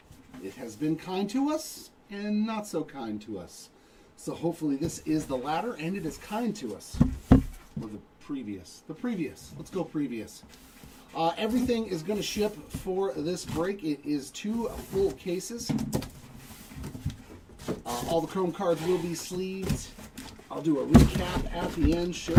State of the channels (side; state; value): both; identical; correlation 1.00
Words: It has been kind to us and not so kind to us. So hopefully this is the latter and it is kind to us. Or the previous. Let's go previous. Everything is going to ship for this break. It is 2 full cases. All the Chrome cards will be sleeved. I'll do a recap at the end,